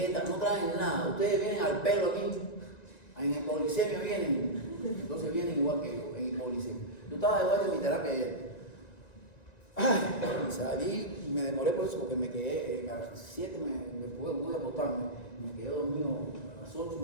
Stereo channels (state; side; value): late; right; 1.9 ms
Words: no traen nada. Ustedes vienen al pelo aquí. En el polisemio vienen. Entonces vienen igual que yo, en el polisemio. Yo estaba de vuelta en mi terapia ayer. Ay, salí y me demoré por eso porque me quedé a las 7 me pude acostarme. Me quedé dormido a las 8